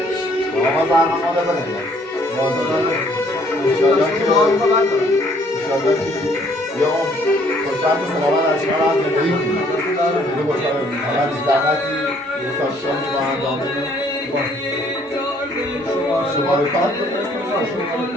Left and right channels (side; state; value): both; normal; correlation 0.63